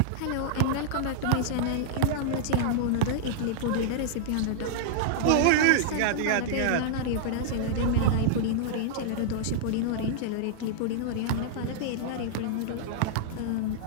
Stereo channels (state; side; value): different; both; correlation -0.01